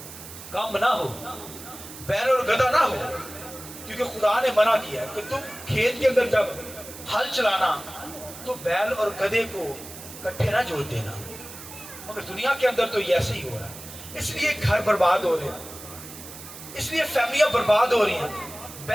کام نہ ہو، بیل اور گدھا نہ ہو. کیونکہ خدا نے منع کیا ہے کہ تم کھیت کے اندر جب ہل چلانا تو بیل اور گدھے کو کٹھے نہ جوڑ دینا. مگر دنیا کے اندر تو یہ ایسے ہی ہو رہا ہے. اس لیے گھر برباد ہو رہے ہیں، اس لیے فیملیاں برباد ہو رہی ہیں.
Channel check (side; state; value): right; noise; hiss, 14 dB below the sound